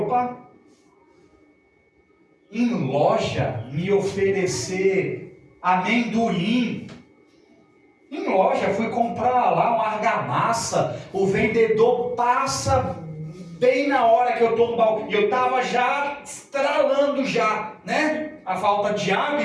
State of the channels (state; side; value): identical; both; correlation 1.00